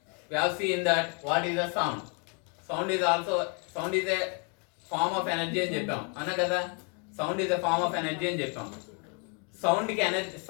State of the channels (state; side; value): quieter; right; 37.1 dB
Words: We have seen that what is a sound. Sound is a form of energy అని చెప్పాం అన్నా కదా. Sound is a form of energy అని చెప్పాం.